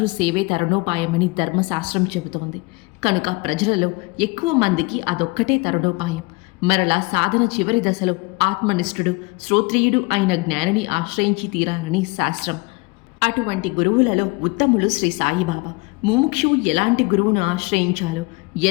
సేవే తరుణోపాయమని ధర్మశాస్త్రం చెబుతోంది. కనుక ప్రజలలో ఎక్కువ మందికి అదొక్కటే తరుణోపాయం. మరలా సాధన చివరి దశలో ఆత్మనిష్ఠుడు శ్రోత్రియుడు అయిన జ్ఞానిని ఆశ్రయించి తీరాలని శాస్త్రం. అటువంటి గురువులలో ఉత్తములు శ్రీ సాయిబాబా. ముముక్షువు ఎలాంటి గురువును ఆశ్రయించాలో,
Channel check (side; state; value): right; quieter; 26.0 dB